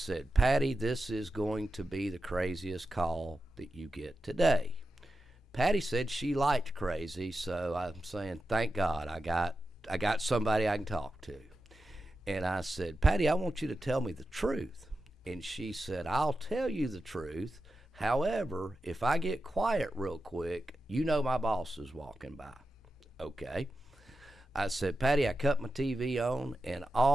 Patty, this is going to be the craziest call that you get today. Patty said she liked crazy, so I'm saying, thank God, I got somebody I can talk to. And I said, Patty, I want you to tell me the truth. And she said, I'll tell you the truth. However, if I get quiet real quick, you know my boss is walking by. Okay. I said, Patty, I cut my TV on, and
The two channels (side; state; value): both; normal; correlation 0.91